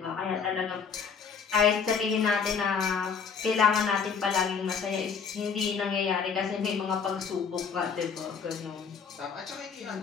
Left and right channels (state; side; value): quieter; right; 6.1 dB